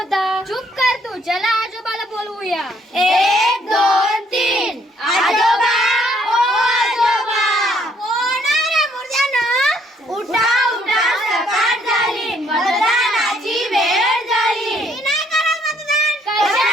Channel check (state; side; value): normal; both; correlation 0.67